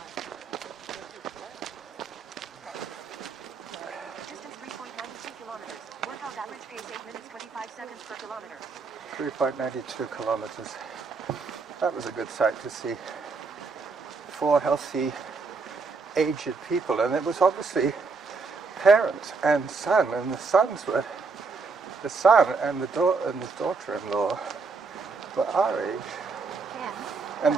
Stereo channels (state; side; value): quieter; left; 4.4 dB